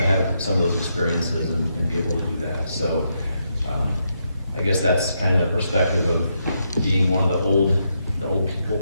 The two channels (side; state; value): both; inverted; correlation -0.80